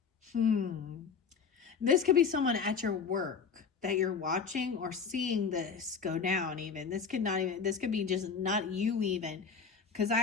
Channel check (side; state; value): right; quieter; 5.9 dB